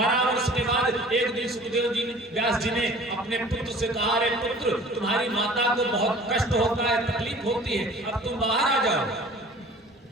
वर्ष के बाद एक दिन सुखदेव जी ने, व्यास जी ने अपने पुत्र से कहा रे पुत्र तुम्हारी माता को बहुत कष्ट होता है, तकलीफ होती है, अब तुम बाहर आ जाओ।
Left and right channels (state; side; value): normal; both; correlation 0.47